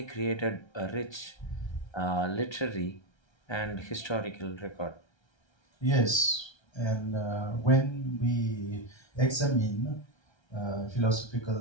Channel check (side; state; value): right; late; 1.3 ms